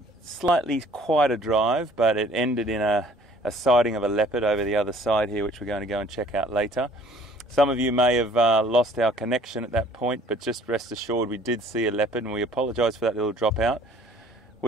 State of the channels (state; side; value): normal; both; correlation 0.55